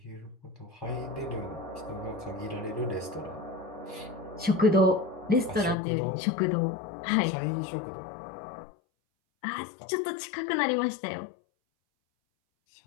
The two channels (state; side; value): drops out; right; at 5.8 s